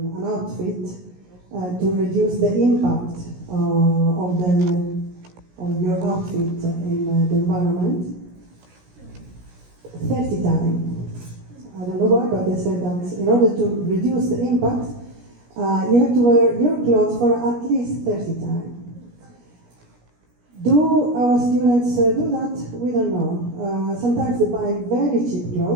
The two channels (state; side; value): late; left; 17 ms